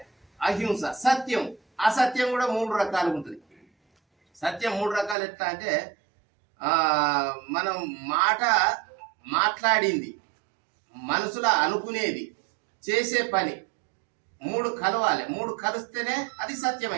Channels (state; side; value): drops out; left; at 5.2 s